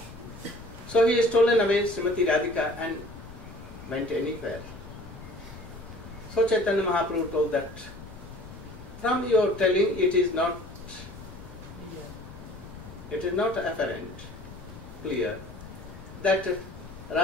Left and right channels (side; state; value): left; noise; rumble, 15 dB below the sound